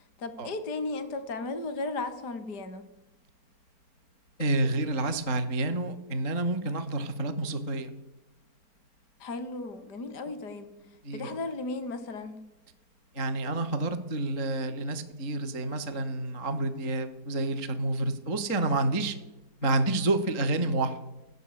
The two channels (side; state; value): right; late; 4.4 ms